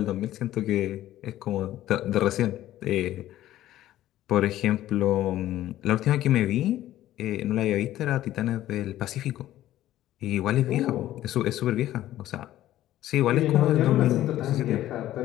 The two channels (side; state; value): right; quieter; 13.8 dB